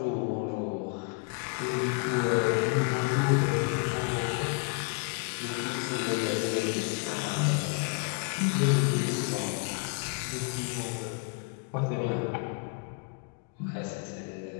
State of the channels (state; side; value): quieter; right; 35.5 dB